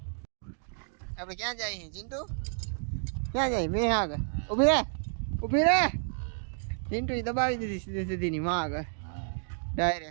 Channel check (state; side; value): silent; left; digital silence